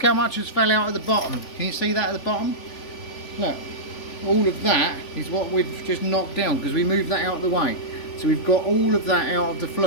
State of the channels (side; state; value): right; late; 3.4 ms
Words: how much has fell out at the bottom. Can you see that at the bottom? Look. All of that is what we've just knocked down because we moved that out of the way. So we've got all of that out of the